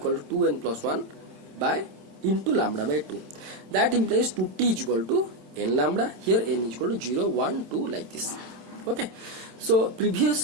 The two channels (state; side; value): late; left; 27 ms